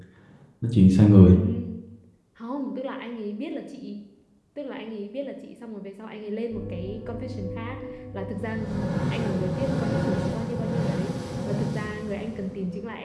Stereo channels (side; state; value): both; identical; correlation 1.00